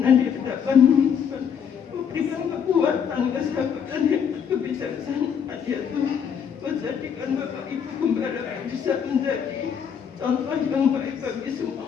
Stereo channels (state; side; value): quieter; right; 7.5 dB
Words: di hadapan-Mu Tuhan. Berikan kekuatan, kesabaran dan kebijaksanaan ya Tuhan. Kau jadikan Bapak Ibu Gembala bisa menjadi contoh yang baik bagi semua